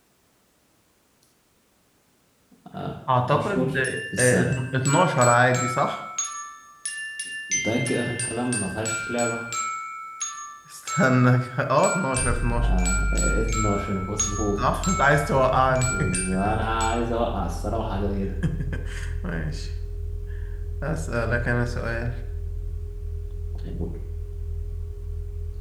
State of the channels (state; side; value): identical; both; correlation 1.00